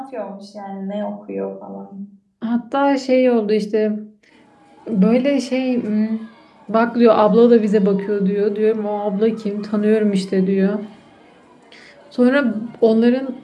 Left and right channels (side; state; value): both; identical; correlation 1.00